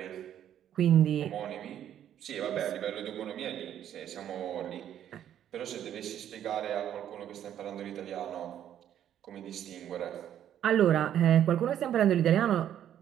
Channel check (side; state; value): left; quieter; 10.5 dB